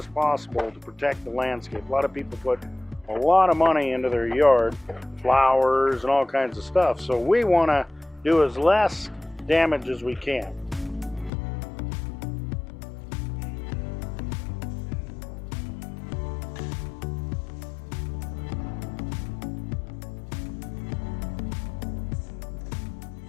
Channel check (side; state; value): right; drops out; at 11.3 s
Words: possible to protect the landscape. A lot of people put a lot of money into their yard, flowers and all kinds of stuff. So we want to do as less damage as we can.